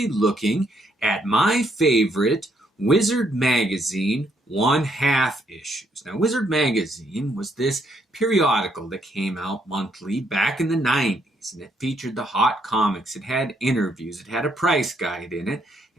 looking at my favorite Wizard Magazine one-half issues. Now, Wizard Magazine was this periodical that came out monthly back in the 90s, and it featured the hot comics. It had interviews, it had a price guide in it,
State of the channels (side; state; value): both; normal; correlation 0.72